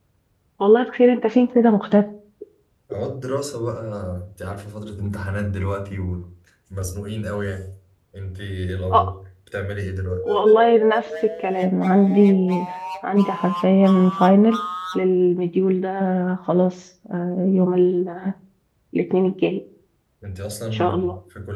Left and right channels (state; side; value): identical; both; correlation 1.00